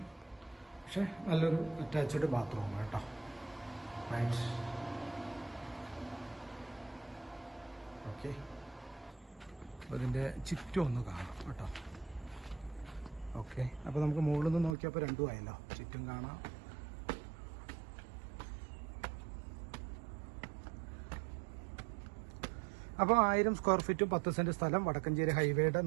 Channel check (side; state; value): left; drops out; at 14.8 s